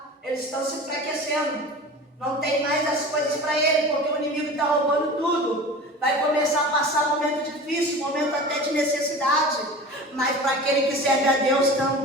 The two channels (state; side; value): normal; both; correlation 0.35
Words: eles estão se enfraquecendo. Não tem mais as coisas para ele, porque o inimigo está roubando tudo. Vai começar a passar momento difícil, momento até de necessidade. Mas para aquele que serve a Deus